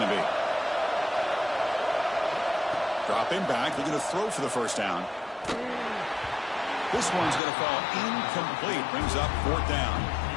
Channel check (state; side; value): drops out; right; at 7.4 s